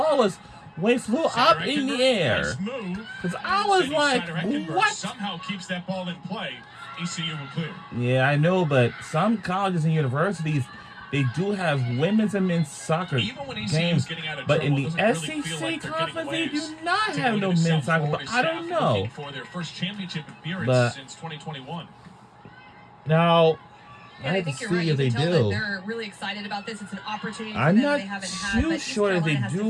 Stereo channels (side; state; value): both; identical; correlation 1.00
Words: was when it flew up in the air. Because I was like, what? Somehow keeps that ball in play. ECU will clear. Yeah, I know, but some colleges and universities, they do have women's and men's soccer games, but in the SEC conference, they do not have no men's soccer. But I don't know. For their first championship appearance since 2021. Now, I have to see if they do. They're really excited about this. It's an opportunity for them they haven't had. I'm not too sure if they